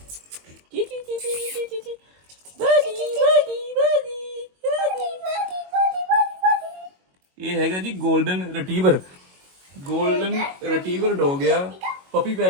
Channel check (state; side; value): late; left; 22 ms